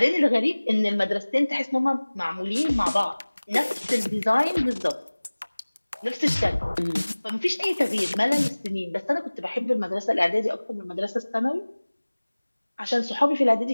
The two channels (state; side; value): inverted; both; correlation -1.00